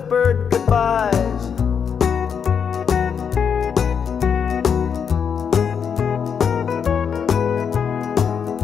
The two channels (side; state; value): right; quieter; 7.0 dB